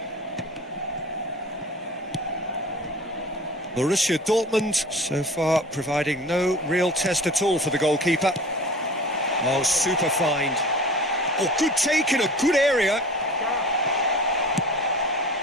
Borussia Dortmund so far providing no real test at all for the goalkeeper. Oh, super find. Oh, good take in a good area.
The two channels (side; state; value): both; normal; correlation 0.41